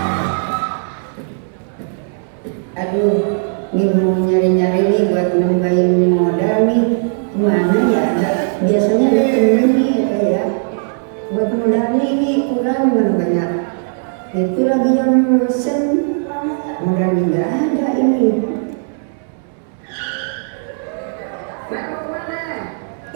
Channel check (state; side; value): silent; left; digital silence